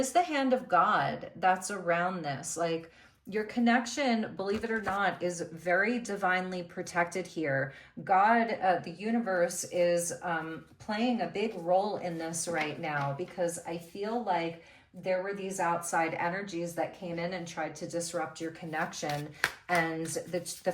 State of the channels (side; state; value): both; identical; correlation 1.00